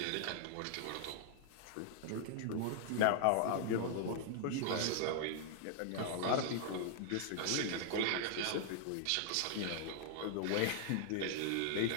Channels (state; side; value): different; both; correlation -0.01